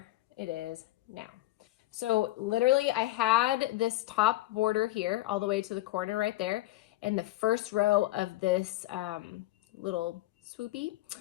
it is now. So literally I had this top border here all the way to the corner right there. And the first row of this little swoopy,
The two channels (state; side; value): quieter; right; 17.3 dB